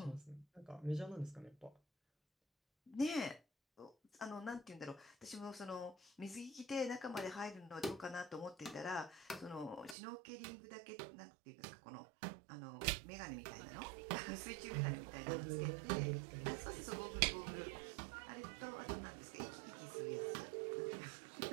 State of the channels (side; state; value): left; drops out; at 10.0 s